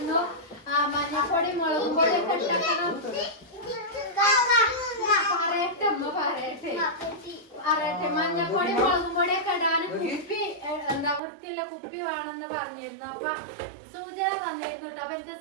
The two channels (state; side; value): drops out; left; at 11.2 s